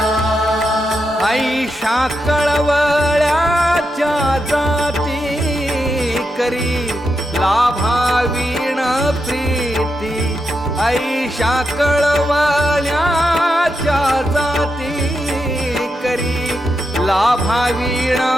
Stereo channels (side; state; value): both; normal; correlation 0.85